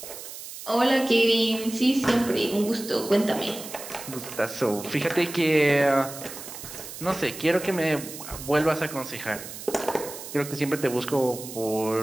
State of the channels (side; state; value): right; noise; hiss, 12 dB below the sound